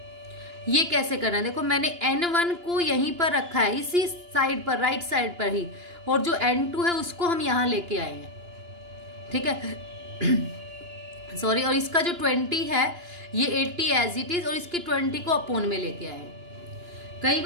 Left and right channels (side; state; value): left; late; 2.9 ms